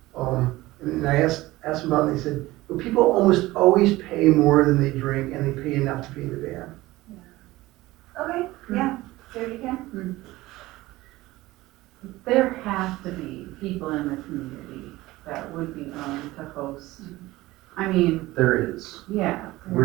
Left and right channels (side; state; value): left; quieter; 18.4 dB